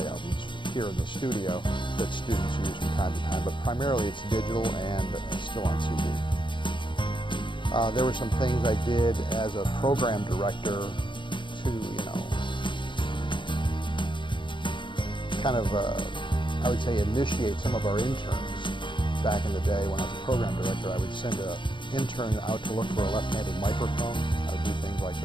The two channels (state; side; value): late; right; 0.23 ms